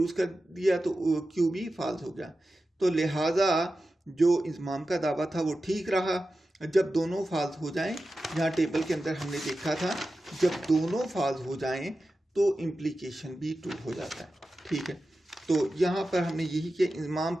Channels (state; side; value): normal; both; correlation 0.93